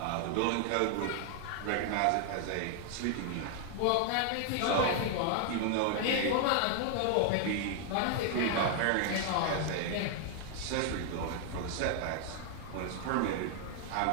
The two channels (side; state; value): both; different; correlation 0.00